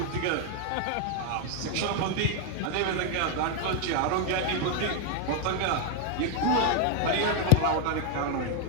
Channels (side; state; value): both; different; correlation 0.00